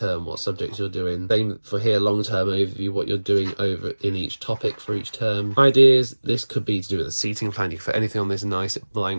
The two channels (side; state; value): both; inverted; correlation -1.00